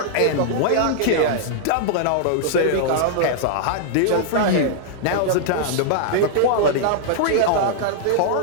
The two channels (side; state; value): both; different; correlation -0.01